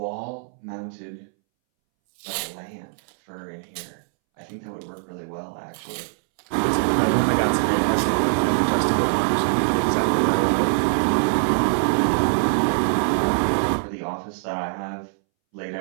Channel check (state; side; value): silent; left; 63 dB below the other